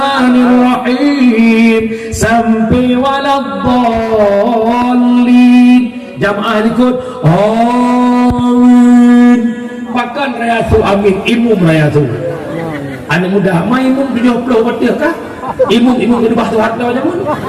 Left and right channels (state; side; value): identical; both; correlation 1.00